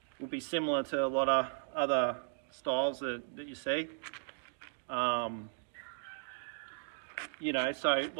will be similar to a lot of other styles that you see. You know, so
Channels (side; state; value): left; silent; digital silence